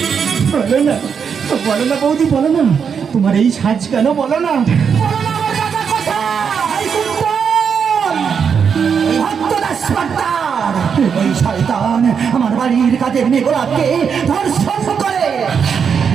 বলো না, বলো না বৌদি, বলো না তোমার এই সাজ কেন? বলো না, ওই শয়তান আমার বাড়ির কাজের মেয়েগুলাকে ধর্ষণ করে,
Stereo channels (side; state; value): left; quieter; 6.7 dB